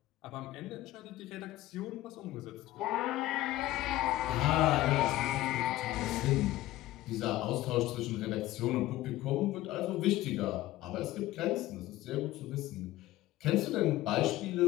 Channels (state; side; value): quieter; right; 16.0 dB